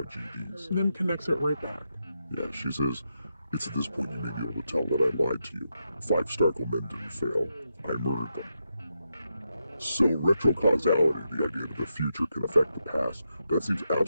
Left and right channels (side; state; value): both; inverted; correlation -0.85